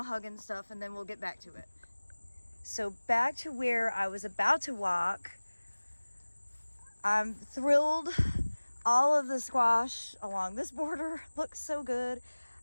hug and stuff, and then we'll get back to it. So back to where I was about to walk. I'm thrilled. All of the squash along this border looks so good.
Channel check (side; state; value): both; inverted; correlation -1.00